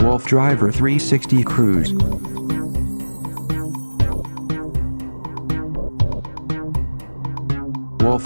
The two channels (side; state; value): both; inverted; correlation -1.00